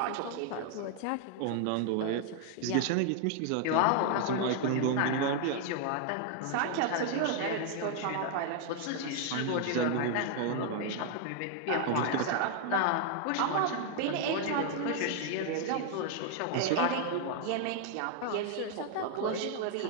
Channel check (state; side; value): different; both; correlation 0.00